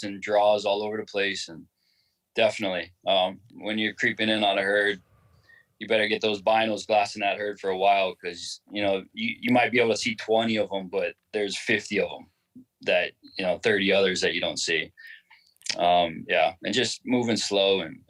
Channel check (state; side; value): identical; both; correlation 1.00